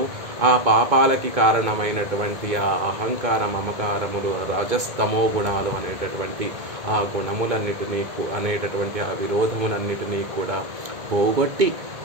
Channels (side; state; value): left; late; 2.2 ms